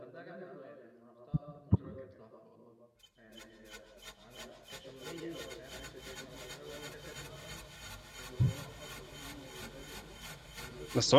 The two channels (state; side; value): identical; both; correlation 1.00